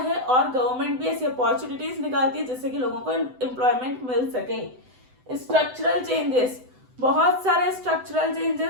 और गवर्नमेंट भी ऐसी अपॉर्चुनिटीज निकालती है जिससे कि लोगों को एम्प्लॉयमेंट मिल सके। स्ट्रक्चरल चेंजेस, बहुत सारे स्ट्रक्चरल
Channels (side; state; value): left; late; 7.9 ms